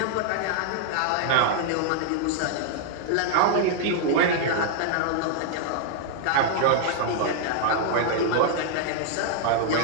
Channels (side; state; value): both; different; correlation -0.01